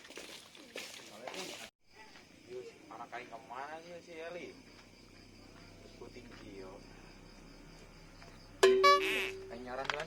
Yuk. Anak kain kemana sih si Eli? Puting kio. Kain nyaran jalan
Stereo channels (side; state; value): both; identical; correlation 1.00